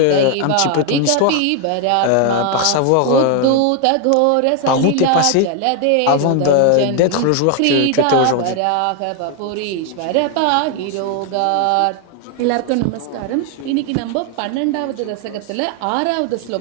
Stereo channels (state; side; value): different; both; correlation 0.01